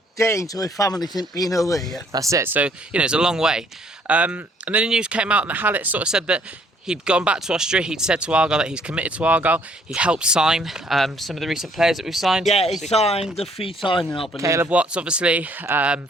days with his family since being away, yeah. That's it. So, you know, it's a long way. And then the news came out and Hallett sort of said that he'd gone back to Austria. He'd said to Argyle that he's committed to Argyle. He helped sign some of the recent players that we've signed. Yeah, he signed the 3 signing, I believe. Caleb Watts, obviously,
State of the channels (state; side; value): normal; both; correlation 0.63